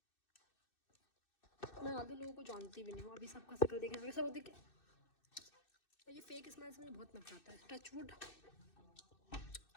ज़्यादा लोगों को जानती भी नहीं हूँ, अभी सबका शक्ल देखने में सब देखे। ये फेक स्माइल से मुझे बहुत नफरत आता है। Touch wood.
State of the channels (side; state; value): right; late; 2.6 ms